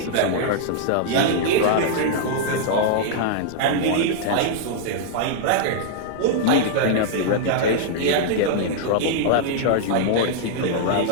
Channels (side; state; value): both; different; correlation -0.01